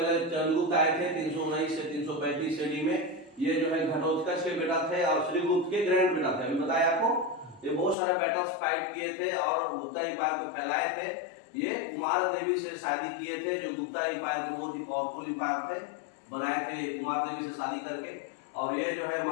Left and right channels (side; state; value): right; drops out; at 8.0 s